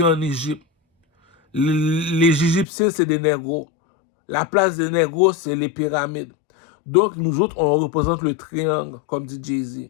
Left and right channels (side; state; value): right; drops out; at 2.7 s